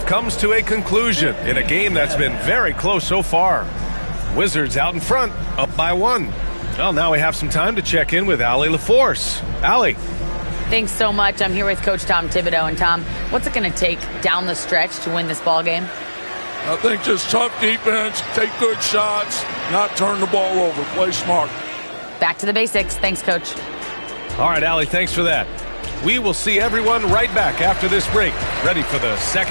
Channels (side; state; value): both; inverted; correlation -1.00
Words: comes to a conclusion in a game that's been very close so far. Wizards out in front, up by 1. Well, now we have some time to check in with Allie LaForce. Allie. Thanks so much. I'm here with Coach Tom Thibodeau. And Tom, what's it going to take down the stretch to win this ball game? I think just tough defense, take good shots, not turn the ball over, play smart. Back to the basics. Thanks, Coach. All right, Allie, thanks for that. We will see everyone right back after this break, ready for the